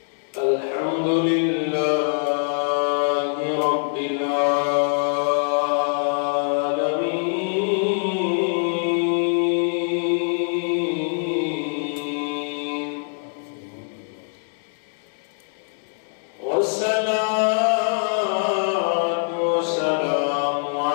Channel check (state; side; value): silent; right; 63 dB below the other